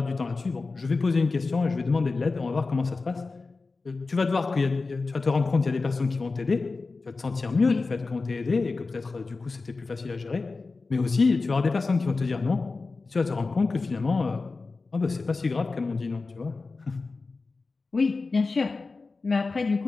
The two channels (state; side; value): quieter; right; 3.9 dB